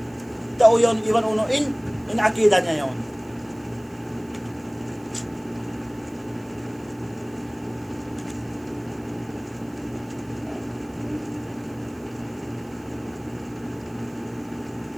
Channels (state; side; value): noise; right; hiss, 28 dB below the sound